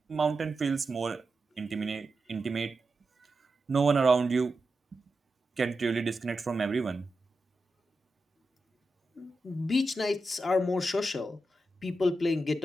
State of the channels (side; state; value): both; normal; correlation 0.89